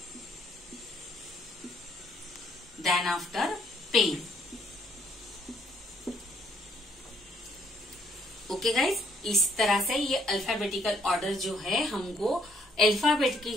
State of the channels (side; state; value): both; normal; correlation 0.67